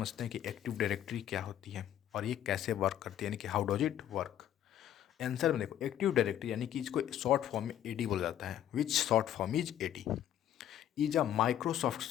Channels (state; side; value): quieter; right; 11.1 dB